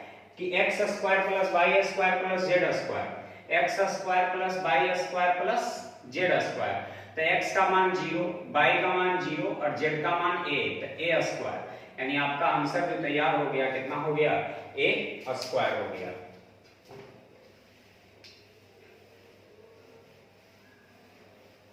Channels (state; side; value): identical; both; correlation 1.00